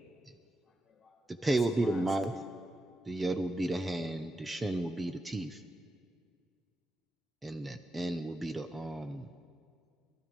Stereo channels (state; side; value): normal; both; correlation 0.88